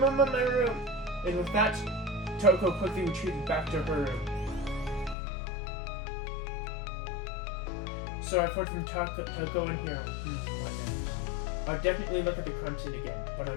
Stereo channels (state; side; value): drops out; right; at 5.2 s